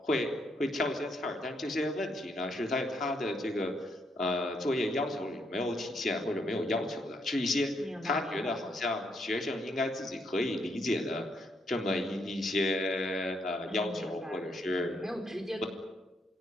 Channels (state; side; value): normal; both; correlation 0.75